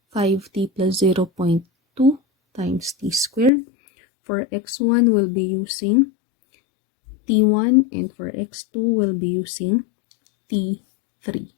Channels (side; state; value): right; drops out; at 3.5 s